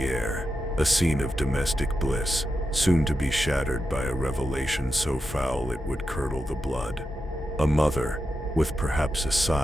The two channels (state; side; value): normal; both; correlation 0.88